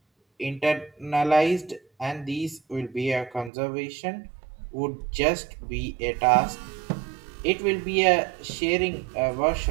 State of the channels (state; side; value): drops out; left; at 3.5 s